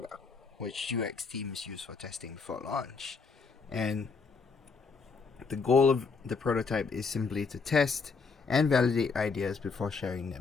which UX teams use for testing before launch. And the goal of the prototype is simply to test and validate ideas before sharing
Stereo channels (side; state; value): right; quieter; 4.8 dB